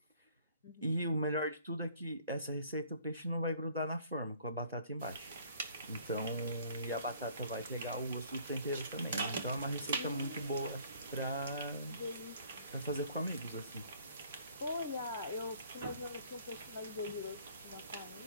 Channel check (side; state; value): both; inverted; correlation -0.57